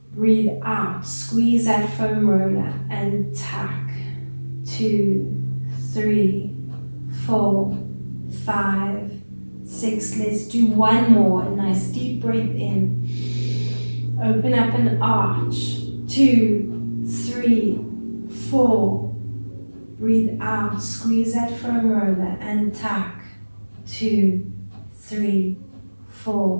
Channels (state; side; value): inverted; both; correlation -1.00